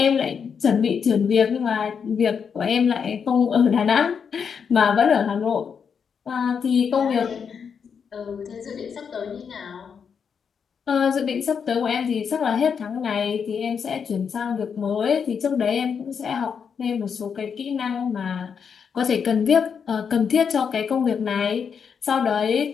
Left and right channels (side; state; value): right; quieter; 6.7 dB